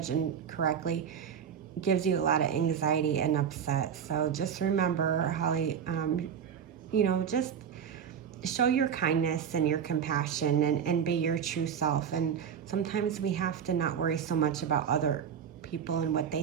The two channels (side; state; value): left; quieter; 8.0 dB